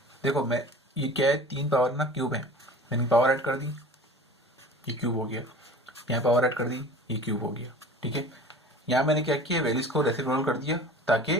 देखो मैं ये क्या है 3 पावर ना क्यूब है, मैंने पावर ऐड कर दी ये क्यूब हो गया, यहाँ पावर ऐड कर दी ये क्यूब हो गया, ठीक है। यहाँ मैंने क्या किया वैल्यूज को रेसिप्रोकल कर दिया ताकि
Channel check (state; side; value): normal; both; correlation 0.41